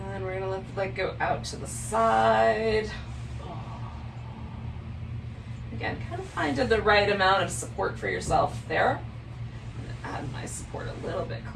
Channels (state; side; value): identical; both; correlation 1.00